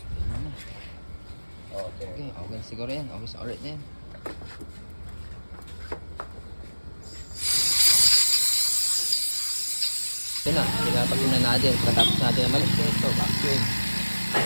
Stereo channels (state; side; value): inverted; both; correlation -1.00